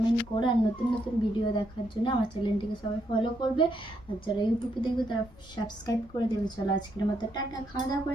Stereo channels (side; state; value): both; normal; correlation 0.77